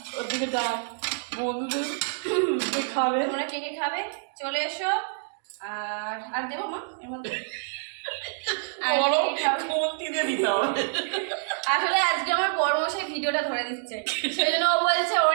ওদিকে ডাক বন্ধুদের খাবে। তোমরা কে কে খাবে চলে এসো। আর দেবো মা এর মধ্যে? আসলে আজকে আমার বড় মশাই ভিডিওটা ধরে দিচ্ছে, সেই জন্য ও বলছে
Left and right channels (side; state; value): left; silent; digital silence